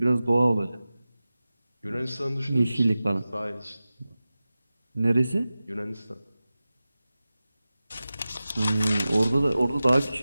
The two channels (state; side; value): inverted; both; correlation -0.96